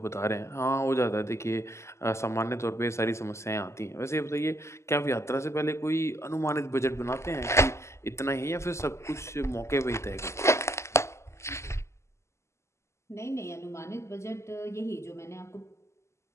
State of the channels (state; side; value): late; right; 0.13 ms